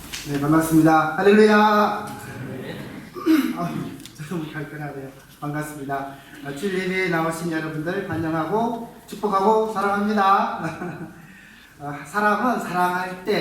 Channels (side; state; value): both; identical; correlation 1.00